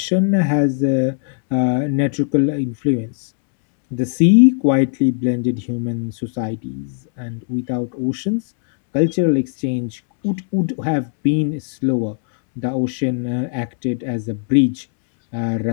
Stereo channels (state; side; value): silent; right; 67 dB below the other